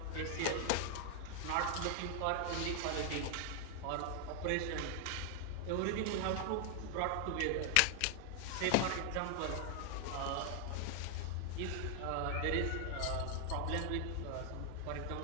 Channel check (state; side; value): different; both; correlation 0.00